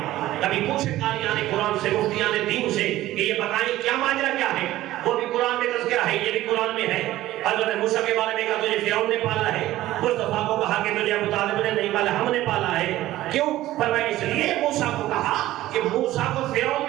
کبھی پوچھے قاریان قرآن سے، مفتیان دین سے کہ یہ بتائیں کیا ماجرا کیا ہے؟ وہ بھی قرآن میں تذکرہ ہے، یہ بھی قرآن میں ہے. حضرت موسیٰ کے بارے میں کہا تجھے فرعون نے پالا ہے. مصطفیٰ کو کہا کہ تجھے ابو طالب نے نہیں پالا، ہم نے پالا ہے. کیوں؟ فرمایا اس لیے موسیٰ کو کہا کہ موسیٰ کو فرعون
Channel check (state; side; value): quieter; left; 15.3 dB